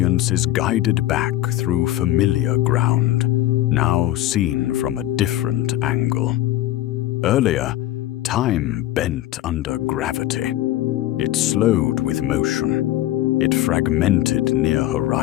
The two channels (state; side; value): quieter; right; 14.6 dB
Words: is guided back through familiar ground, now seen from a different angle. Earlier, time bent under gravity. It slowed with motion. It fragmented near